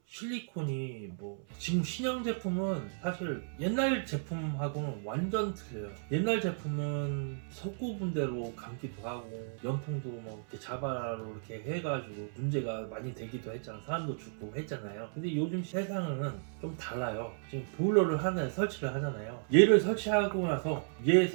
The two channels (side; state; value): left; silent; 55 dB below the other